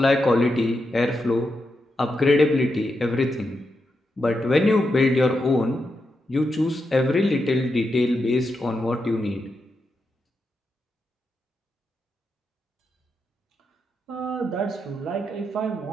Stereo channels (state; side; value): normal; both; correlation 0.85